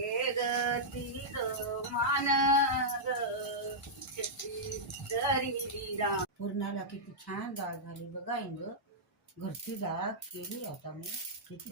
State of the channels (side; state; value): both; normal; correlation -0.09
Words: गती मान ग पूर्णाला किती छान डाळ झाली बघा इंग. घरची डाळ केली आता मी, किती